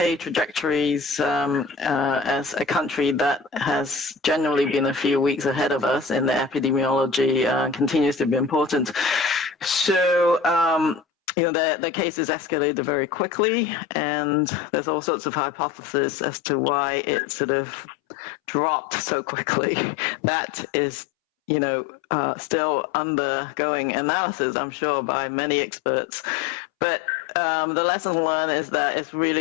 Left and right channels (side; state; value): right; drops out; at 11.1 s